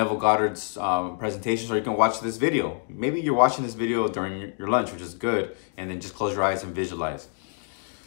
Goddard's presentations, or you can watch this video. Maybe you're watching this video during your lunch, which is good. And then just close your eyes and visualize.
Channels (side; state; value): right; silent; digital silence